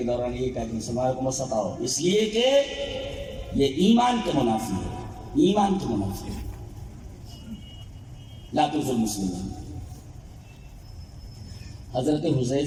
دوران یہ کہا کہ مسلمانوں کو مت ستاؤ، اس لیے کہ یہ ایمان کے منافی ہے، ایمان کے منافی ہے۔ لا تؤذوا المسلمین۔ حضرت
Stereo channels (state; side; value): identical; both; correlation 1.00